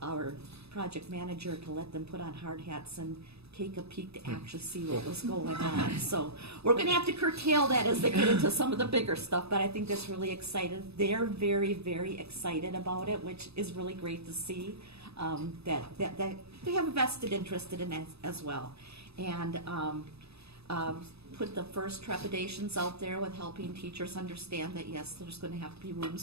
our project manager to let them put on hard hats and take a peek to actually see what was going on. So we're going to have to curtail that as they get into some of the bigger stuff, but I think that's really exciting. They're very, very excited about it, which is really great to see, that they have a vested interest in it as well. And put the first trepidations out there with helping teachers understand that, yes, there's going to have to be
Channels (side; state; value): left; late; 0.79 ms